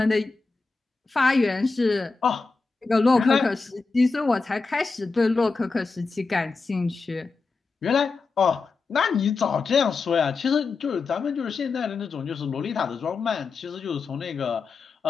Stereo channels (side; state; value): right; quieter; 4.2 dB